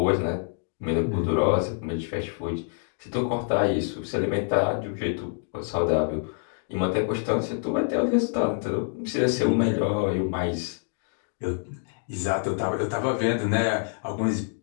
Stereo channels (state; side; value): silent; right; 61 dB below the other